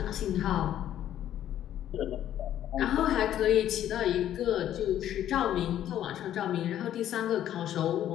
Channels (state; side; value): quieter; right; 11.4 dB